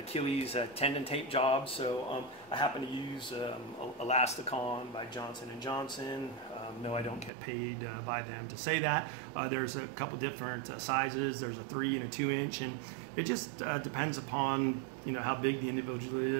tendon tape job. So I happen to use Elasticon by Johnson & Johnson. No, I don't get paid by them to say that. There's a couple different sizes. There's a 3 and a 2 inch, and it just depends upon how big the individual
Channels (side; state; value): left; drops out; at 7.3 s